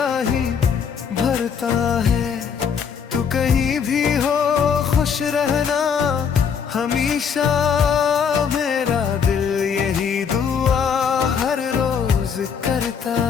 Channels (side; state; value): right; quieter; 6.9 dB